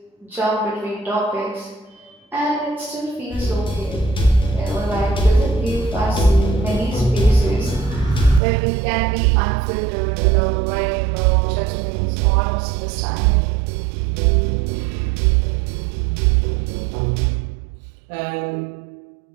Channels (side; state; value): left; drops out; at 8.4 s